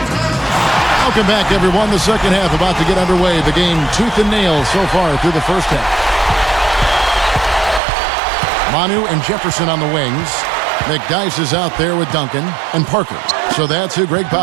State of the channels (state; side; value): drops out; left; at 7.8 s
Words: Welcome back, everyone. The second half about to get underway. The game tooth and nail so far through the first half. Manu and Jefferson on the wings. McDyess is out there with Duncan and Parker. So that's who Greg